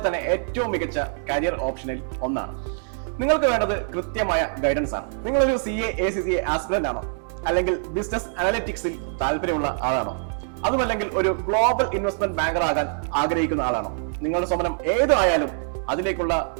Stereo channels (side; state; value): left; silent; digital silence